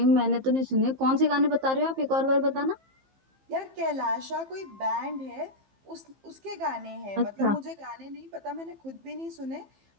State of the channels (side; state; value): left; late; 15 ms